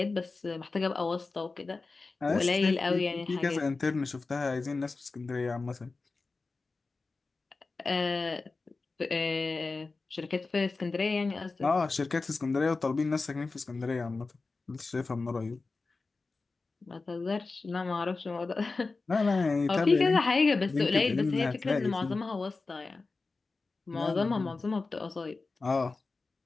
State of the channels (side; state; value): right; quieter; 3.8 dB